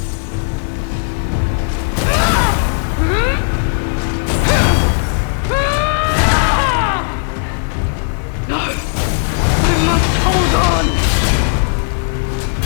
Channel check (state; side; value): silent; right; digital silence